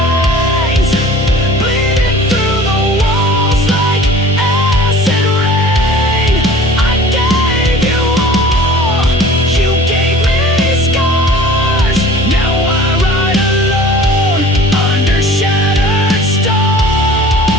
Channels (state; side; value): normal; both; correlation 0.45